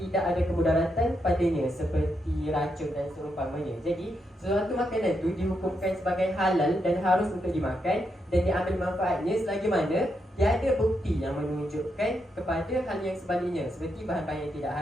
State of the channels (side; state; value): both; normal; correlation 0.82